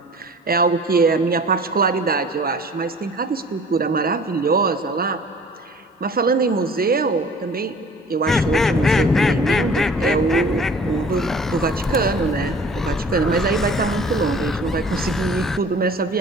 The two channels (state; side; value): normal; both; correlation 0.48